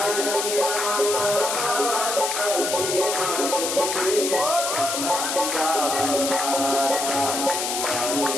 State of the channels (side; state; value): left; noise; hiss, 2 dB below the sound